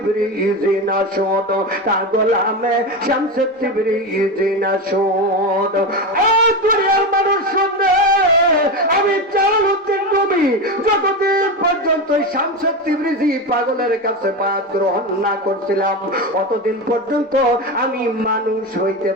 না শুদ, তা গোলামে শামস তিবরিজি না শুদ। ও দুনিয়ার মানুষ শুনে, আমি জালালউদ্দিন রুমি যতদিন পর্যন্ত শামস তিবরিজি পাগলের কাছে বায়াত গ্রহণ না করছিলাম, অতদিন পর্যন্ত আমি মানুষ হইতে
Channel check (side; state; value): both; normal; correlation 0.18